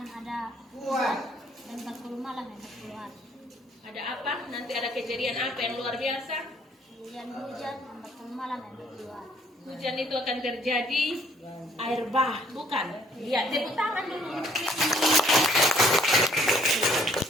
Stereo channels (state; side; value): normal; both; correlation 0.62